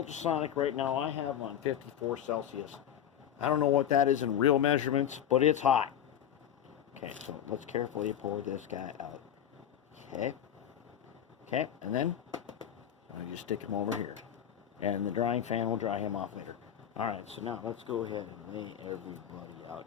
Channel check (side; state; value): right; quieter; 10.0 dB